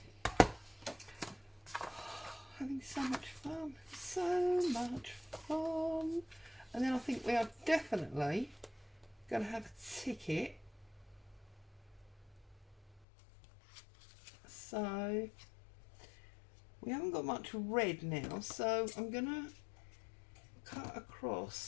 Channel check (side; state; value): right; drops out; at 13.1 s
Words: Having so much fun. So much fun. And then I think we are definitely going to have a ticket. So we haven't got much red now, so I'm going to cut